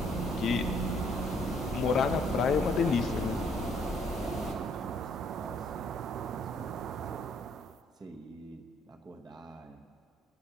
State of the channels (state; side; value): normal; both; correlation 0.65